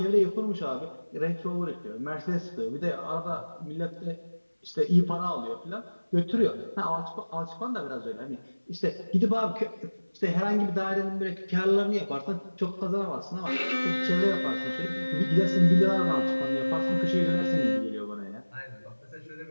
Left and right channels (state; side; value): inverted; both; correlation -1.00